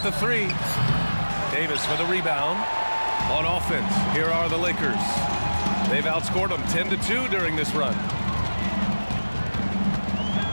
the 3. Davis for the rebound. On offense, here are the Lakers. They've outscored them 10-2 during this run.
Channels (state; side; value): inverted; both; correlation -1.00